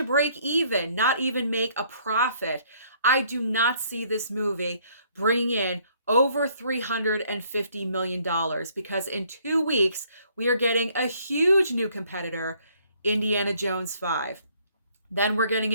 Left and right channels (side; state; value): both; inverted; correlation -0.64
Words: break even, not even make a profit. I do not see this movie bringing in over $350 million, because in 2 weeks, we are getting a huge new competitor, Indiana Jones 5. Then we're getting